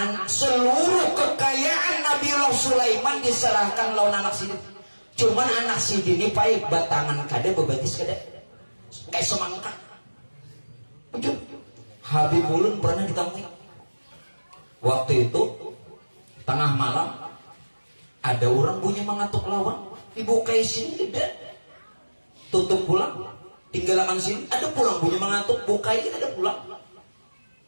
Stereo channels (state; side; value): inverted; both; correlation -1.00